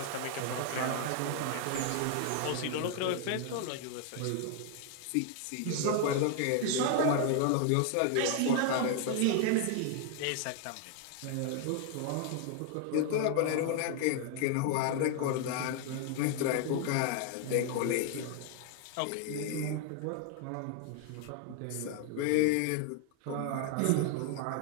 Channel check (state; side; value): different; both; correlation 0.00